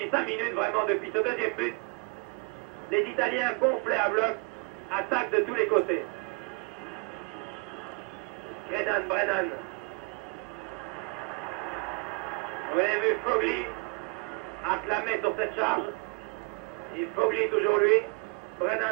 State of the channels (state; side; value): quieter; left; 32.2 dB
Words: 5 minutes, vraiment, depuis ce deuxième but, les Italiens gonflés à bloc, attaquent de tous les côtés. Brennan. Vous avez vu Fogli acclamé sur cette charge. Et Fogli toujours lui.